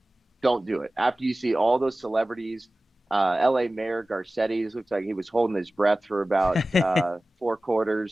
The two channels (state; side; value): normal; both; correlation 0.97